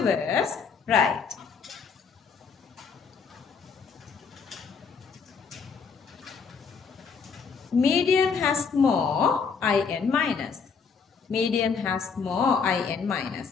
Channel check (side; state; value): right; quieter; 5.7 dB